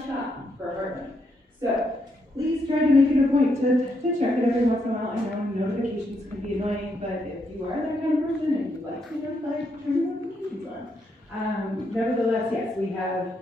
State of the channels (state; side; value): normal; both; correlation 0.78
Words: shop for Heartland. So please try to make it a point to check it every once in a while. I know notifications can be annoying, but if you are that kind of person and you like to notify, turn your notifications on. Nevertheless, yes, we have